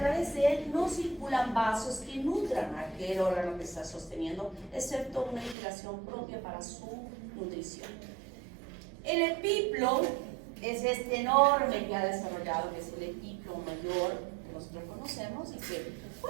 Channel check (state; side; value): drops out; left; at 5.6 s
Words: de él no circulan vasos que nutran a aquel órgano que está sosteniendo, excepto una irrigación propia para su nutrición. El epiplo es este enorme que ha desarrollado, que es el epiplo mayor que nosotros conocemos. Y que,